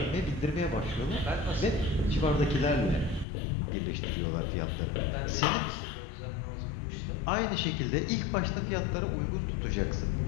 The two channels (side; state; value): right; drops out; at 3.2 s